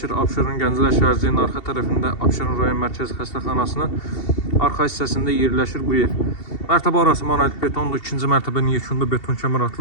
Abşeron Gənclər şəhərciyinin arxa tərəfində Abşeron rayon Mərkəzi Xəstəxanasının arxa hissəsində yerləşir bu ev. Mərtəbə arası monolit betondur. İkinci mərtəbənin yekunda beton kəmər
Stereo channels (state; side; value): late; right; 2.7 ms